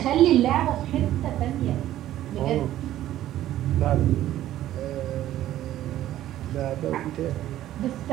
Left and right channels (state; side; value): quieter; left; 13.2 dB